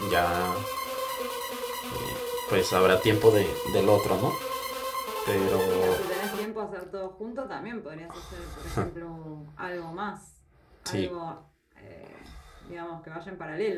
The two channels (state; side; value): identical; both; correlation 1.00